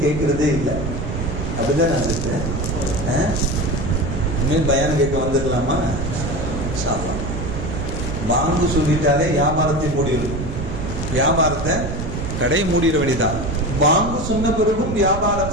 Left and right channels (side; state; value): right; noise; rumble, 5 dB below the sound